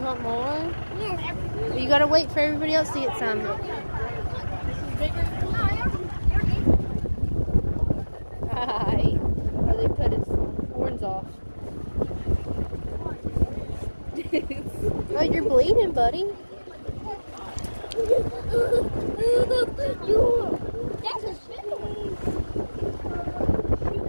want more? Yes. You gotta wait for everybody else to get some. Hi. Oh, they cut his horns off. Oh, you're bleeding, buddy.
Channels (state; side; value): inverted; both; correlation -1.00